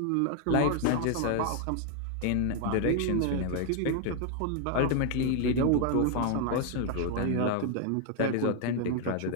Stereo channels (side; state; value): both; different; correlation 0.00